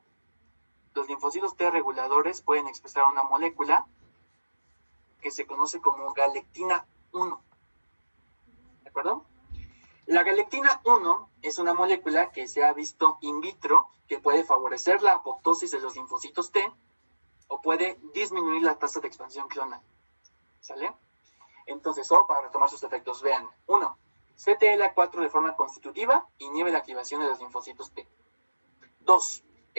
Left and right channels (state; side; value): inverted; both; correlation -1.00